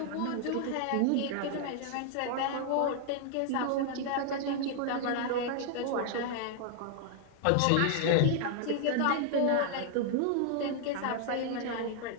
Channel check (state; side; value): different; both; correlation 0.00